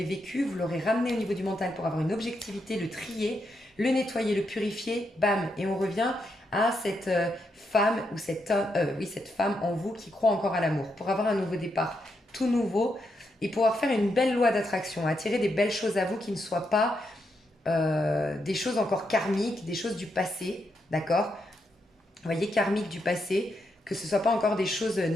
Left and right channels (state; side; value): normal; both; correlation 0.81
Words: vécu, vous l'aurez ramené au niveau du mental pour avoir une objectivité, le trier, le nettoyer, le purifier, bam, et on revient à cette femme ou cette femme en vous qui croit encore à l'amour, pour avoir un nouveau départ, tout nouveau, et pouvoir faire une belle loi d'attraction, attirer des belles choses à vous qui ne soient pas des choses encore karmiques, des choses du passé, d'accord? Vous voyez, karmique du passé, que ce ne soit pas encore des choses